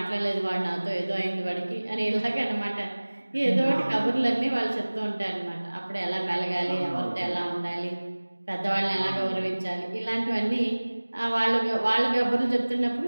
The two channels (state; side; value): inverted; both; correlation -1.00